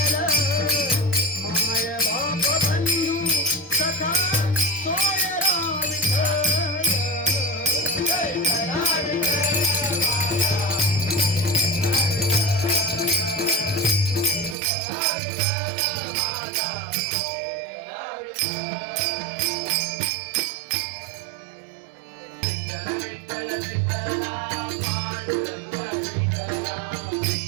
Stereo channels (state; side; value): drops out; left; at 14.6 s